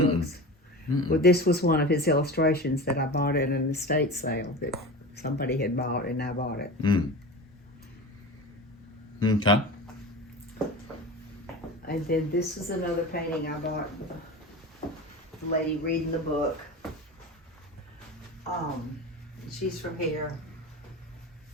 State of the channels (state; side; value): normal; both; correlation 0.31